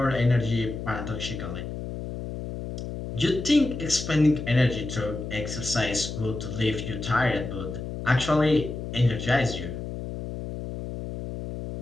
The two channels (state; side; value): noise; left; hum, 7 dB below the sound